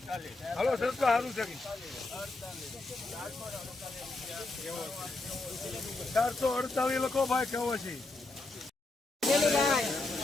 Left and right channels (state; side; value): quieter; right; 3.2 dB